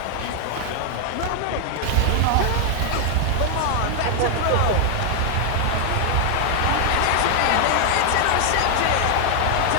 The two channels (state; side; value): different; both; correlation 0.00